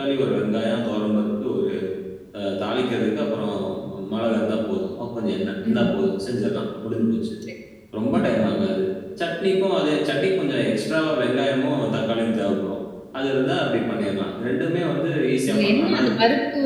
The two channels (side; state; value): both; identical; correlation 1.00